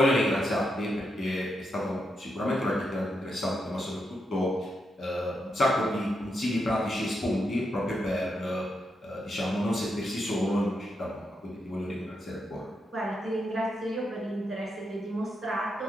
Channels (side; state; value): both; normal; correlation 0.83